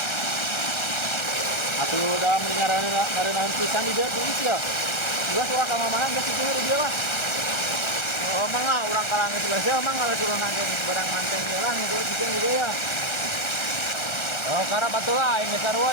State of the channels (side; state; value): right; late; 1.3 ms